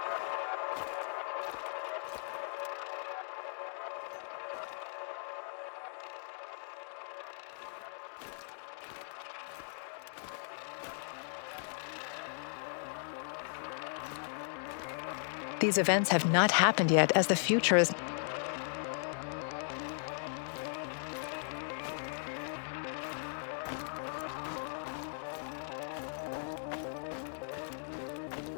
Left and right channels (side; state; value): right; silent; digital silence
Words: These events have not happened yet, as the future is...